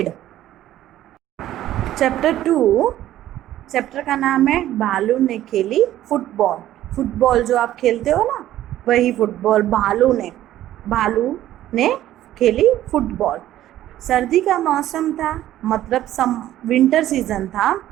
Chapter 2. Chapter का नाम है भालू ने खेली फुटबॉल। फुटबॉल जो आप खेलते हो ना, वही फुटबॉल। भालू ने खेली फुटबॉल। सर्दी का मौसम था, मतलब विंटर सीजन था।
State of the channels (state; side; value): quieter; left; 13.3 dB